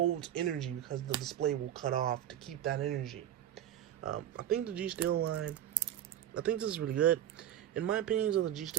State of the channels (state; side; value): quieter; left; 11.2 dB